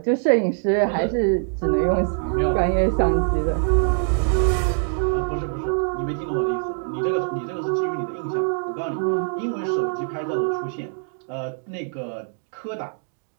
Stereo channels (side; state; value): left; silent; 63 dB below the other